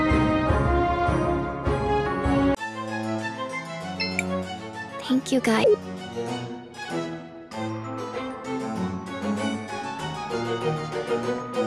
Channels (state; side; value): identical; both; correlation 1.00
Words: Thank you, guys.